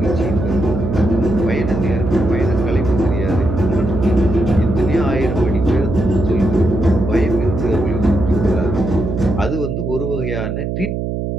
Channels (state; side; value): noise; right; hum, 3 dB below the sound